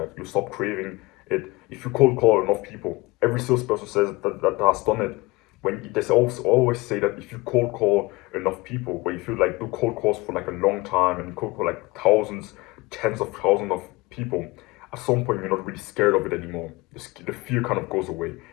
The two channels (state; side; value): quieter; right; 23.0 dB